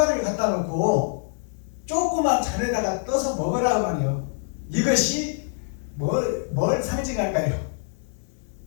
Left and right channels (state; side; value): silent; right; 62 dB below the other